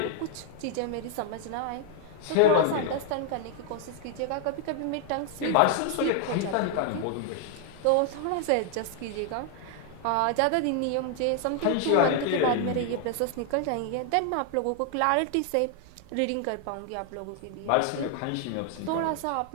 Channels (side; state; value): both; different; correlation 0.00